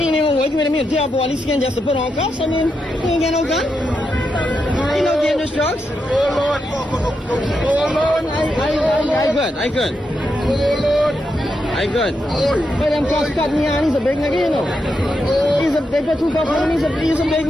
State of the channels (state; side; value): normal; both; correlation 0.84